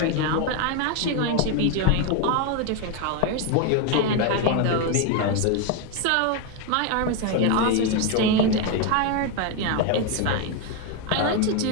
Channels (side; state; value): both; different; correlation 0.02